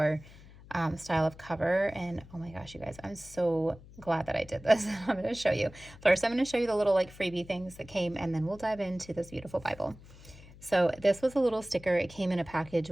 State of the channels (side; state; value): left; noise; hum, 20 dB below the sound